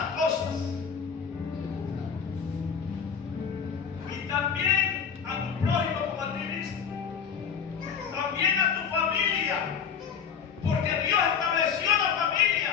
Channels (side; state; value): right; quieter; 7.0 dB